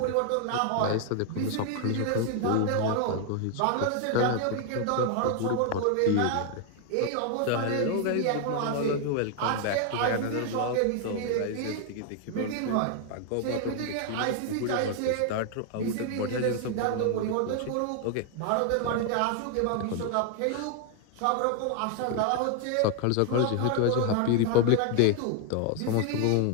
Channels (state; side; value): different; both; correlation 0.00